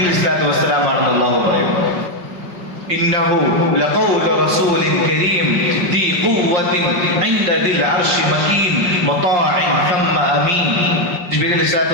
അലൈഹിസ്സലാത്തു വസ്സലാം ആണെന്ന് അള്ളാഹു പറയുന്നു. ഇന്നഹു ലഖൗലു റസൂലിൻ കരീം ദി ഖുവ്വത്തിൻ ഇൻദ ദിൽ അർശി മകീൻ മുതാഇൻ തമ്മ അമീൻ. ജിബ്രീൽ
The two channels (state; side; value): late; left; 5.3 ms